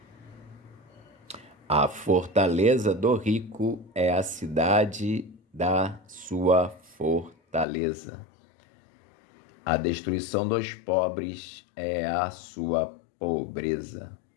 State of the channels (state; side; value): drops out; right; at 7.7 s